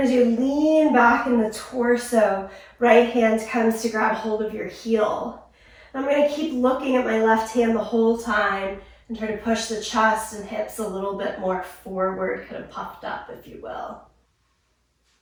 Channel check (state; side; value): identical; both; correlation 1.00